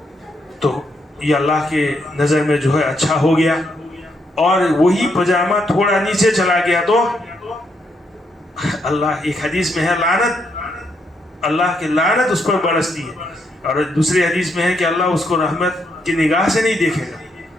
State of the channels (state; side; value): normal; both; correlation 0.77